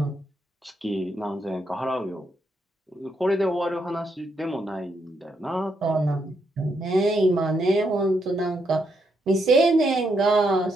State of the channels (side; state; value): both; normal; correlation 0.78